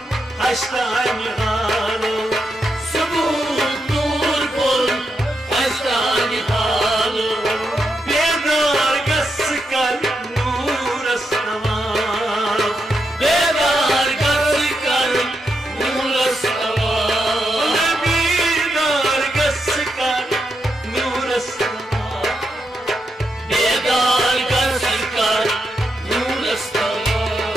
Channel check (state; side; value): normal; both; correlation 0.83